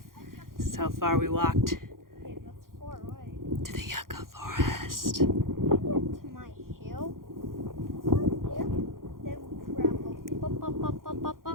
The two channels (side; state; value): left; late; 0.91 ms